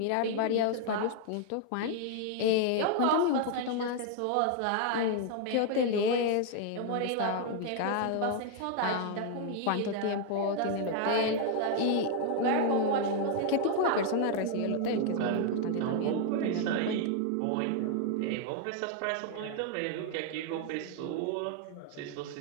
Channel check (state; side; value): different; both; correlation 0.00